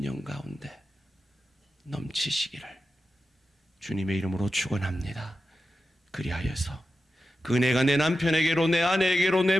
가운데 넘치시기를 주님의 이름으로 축원합니다. 그리하여서 그 은혜가 내 남편에게로, 내 아내에게로,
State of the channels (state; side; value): normal; both; correlation 0.91